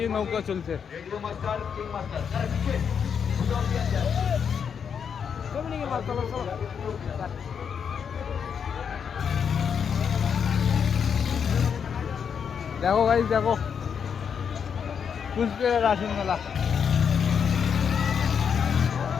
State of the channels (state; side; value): quieter; right; 7.1 dB